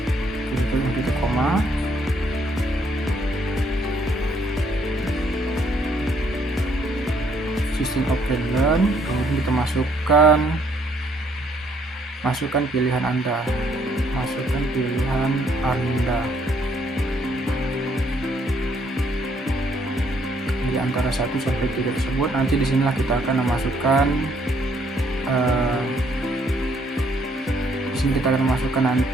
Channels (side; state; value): both; normal; correlation 0.68